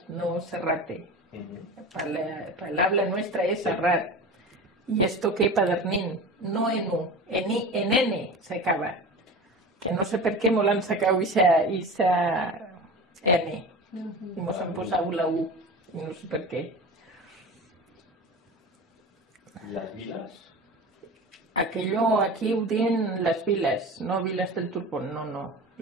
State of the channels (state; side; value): normal; both; correlation 0.32